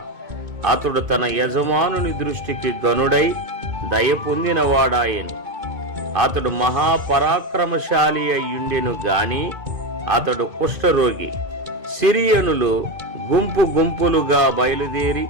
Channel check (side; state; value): left; late; 2.5 ms